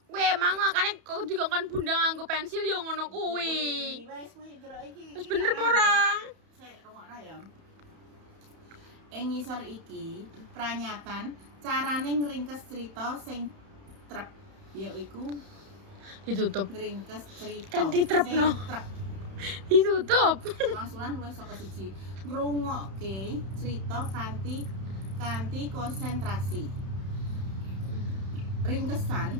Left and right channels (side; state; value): left; late; 31 ms